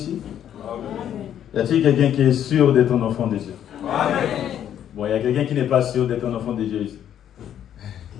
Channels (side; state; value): right; quieter; 10.1 dB